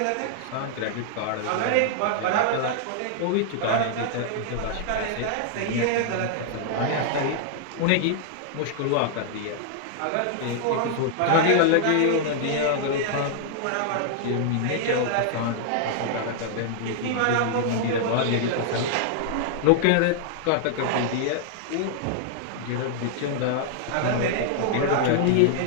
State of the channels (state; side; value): different; both; correlation -0.01